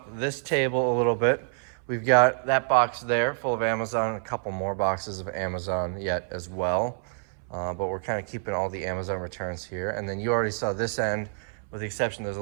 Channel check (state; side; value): silent; left; 60 dB below the other